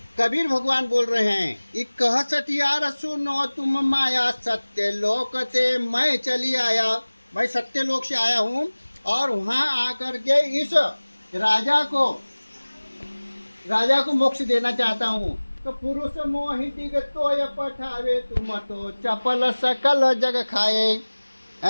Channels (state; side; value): inverted; both; correlation -1.00